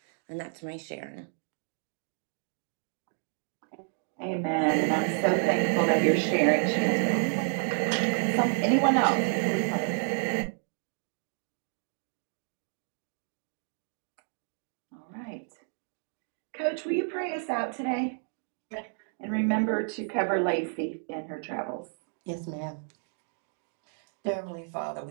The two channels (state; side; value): silent; left; 57 dB below the other